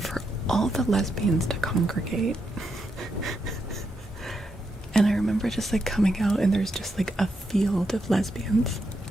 all the lesbians to congregate. And I remember just like coming out and there's just like a field of lesbians.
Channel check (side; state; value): both; normal; correlation 0.82